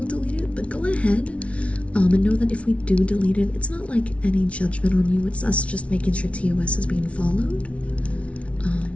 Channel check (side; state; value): right; late; 0.062 ms